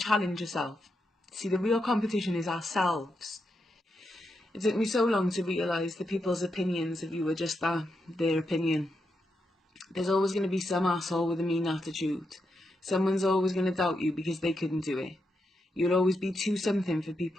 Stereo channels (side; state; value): both; normal; correlation 0.84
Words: yourself. See, the real competition is ourselves. It took me so long to realise that people's opinions of you are just that, their opinion. There's always going to be some asshole with a mean attitude. Someone's always going to doubt you because they couldn't do it. You'll always be too something for